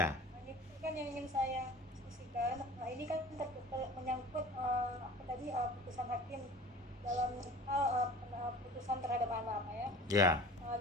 Nah, itu kan yang ingin saya diskusikan. Nah, ini kan menyangkut putusan hakim dalam hal putusan terhadap anak, Pak ya. Ya.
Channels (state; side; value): normal; both; correlation 0.41